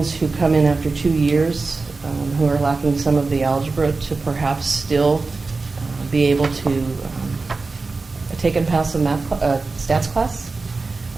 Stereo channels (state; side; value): quieter; left; 3.9 dB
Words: who come in after 2 years, who are lacking some of the algebra, to perhaps still be able to take and pass a stats class,